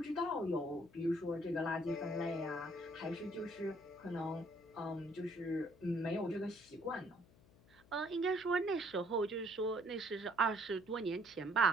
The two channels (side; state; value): left; noise; hum, 26 dB below the sound